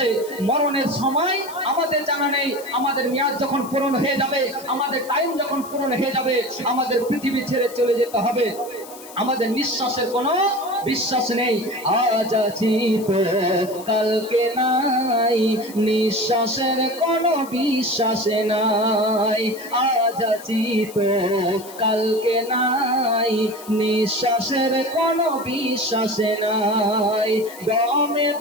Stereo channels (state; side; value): noise; left; hiss, 18 dB below the sound